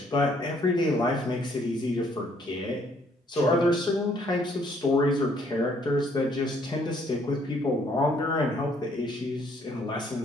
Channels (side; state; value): both; normal; correlation 0.65